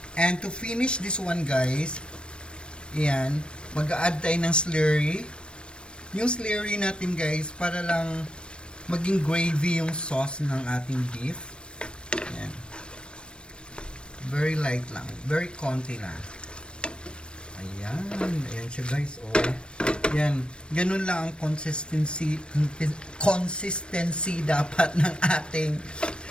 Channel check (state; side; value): late; right; 0.056 ms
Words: And to finish this one, guys, yan, mag-a-add tayo ng slurry. Yung slurry natin, guys, para lang maging gravy yung sauce ng ating beef. Yan. Very light lang. Very konti lang. Ayan. Ayan siya, guys. Oh. Yan. Ganun lang ang consistency dapat ng ating